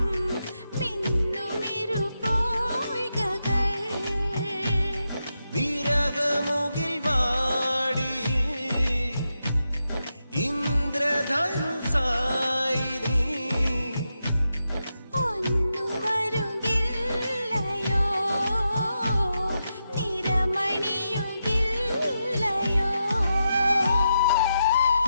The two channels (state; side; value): inverted; both; correlation -0.86